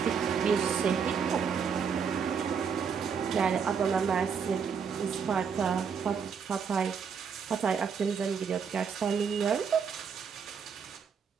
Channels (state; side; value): quieter; left; 6.5 dB